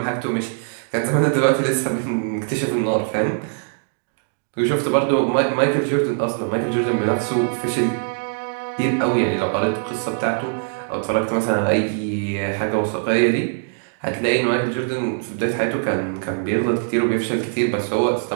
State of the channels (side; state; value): left; silent; digital silence